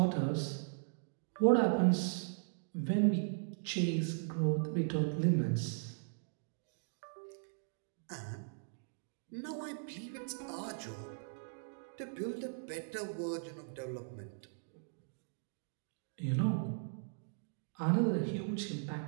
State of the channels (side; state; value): left; silent; digital silence